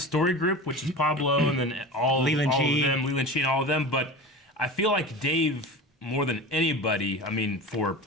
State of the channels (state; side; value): normal; both; correlation 0.32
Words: story group, which is Pablo, and then Leland all Chee. of them, Leland Chee and all of them. But I feel like Dave, more than anybody, I mean, for